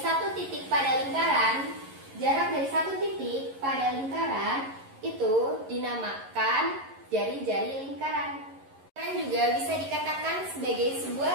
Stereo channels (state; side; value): late; left; 11 ms